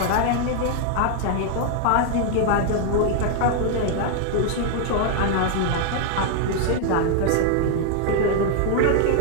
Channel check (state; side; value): different; both; correlation 0.00